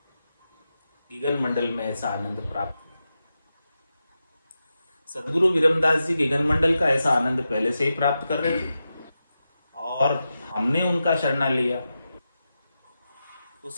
गिगन मंडल में ऐसा आनंद प्राप्त हुआ। सदगुरु विरमदास जी गिगन मंडल का ऐसा आनंद पहले से ही प्राप्त कर रहे थे और हमने उनका शरणा लिया, तो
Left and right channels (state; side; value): inverted; both; correlation -0.90